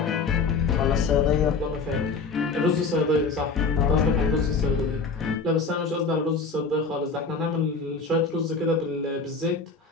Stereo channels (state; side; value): quieter; right; 4.4 dB